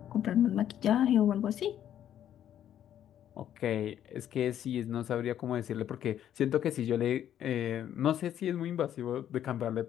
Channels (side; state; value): right; quieter; 10.6 dB